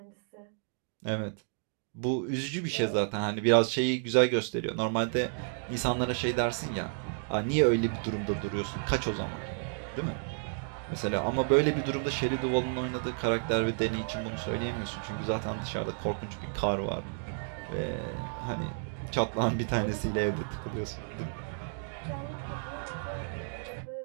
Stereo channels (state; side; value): silent; left; digital silence